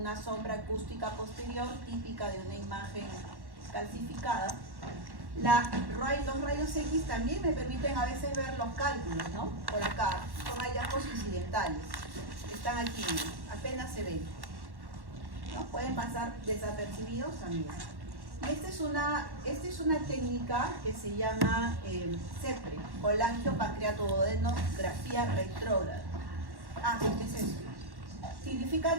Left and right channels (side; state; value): left; late; 1.1 ms